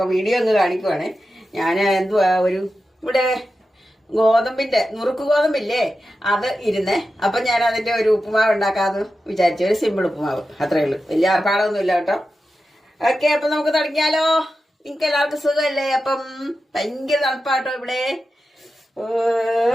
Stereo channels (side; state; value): both; normal; correlation 0.91